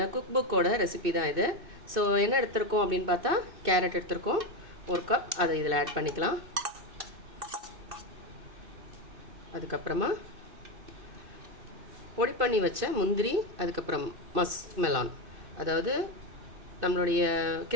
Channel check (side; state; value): left; late; 2.6 ms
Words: குக் புக்கோட ரெசிபி தான் இது. ஸோ என்ன எடுத்திருக்கோம் அப்படின்னு பார்த்தா கேரட் எடுத்திருக்கோம், ஒரு கப். அதை இதில் ஆட் பண்ணிக்கலாம். அதுக்கப்புறமா பொடி பண்ணி வச்ச முந்திரி, அதுக்கப்புறம் மஸ்க் மெலான், அதாவது நம்மளுடைய